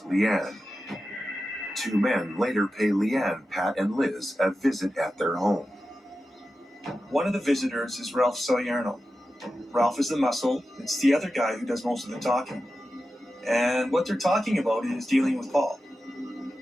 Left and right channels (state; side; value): normal; both; correlation 0.92